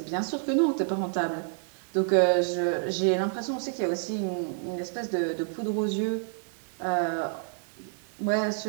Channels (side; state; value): left; silent; 59 dB below the other